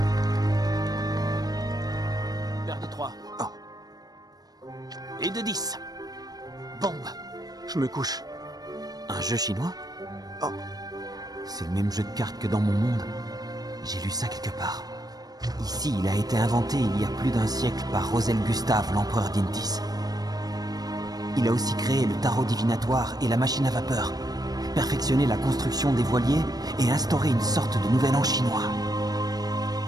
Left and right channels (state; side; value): late; left; 0.19 ms